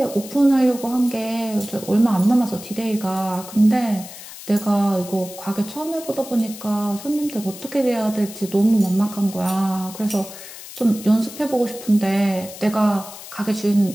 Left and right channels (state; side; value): noise; left; hiss, 14 dB below the sound